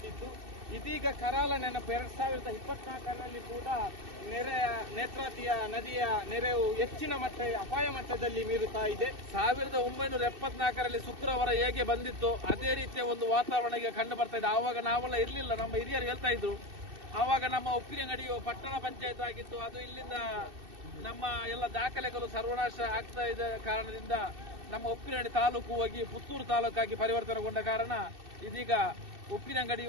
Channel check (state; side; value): late; left; 2.6 ms